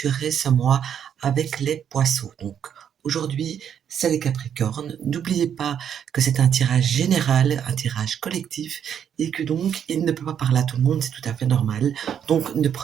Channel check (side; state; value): left; quieter; 8.7 dB